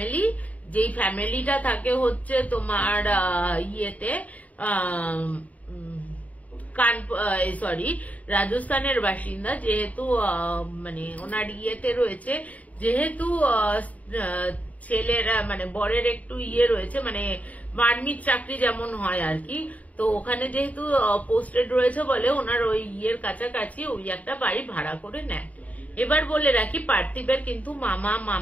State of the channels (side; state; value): right; late; 0.071 ms